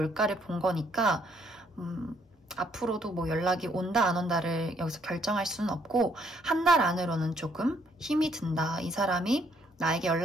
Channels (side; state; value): both; normal; correlation 0.68